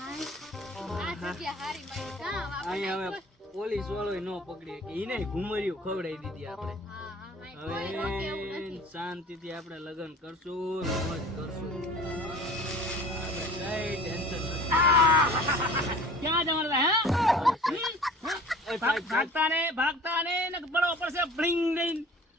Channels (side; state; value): both; normal; correlation 0.45